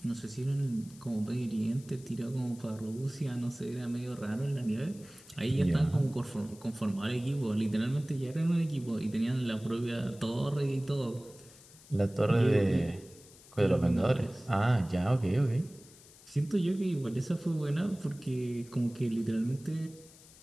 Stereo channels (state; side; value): noise; left; hiss, 22 dB below the sound